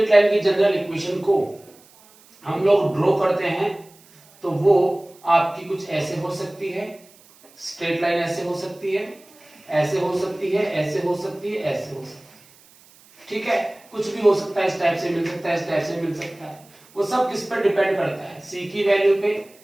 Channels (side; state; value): right; noise; hiss, 27 dB below the sound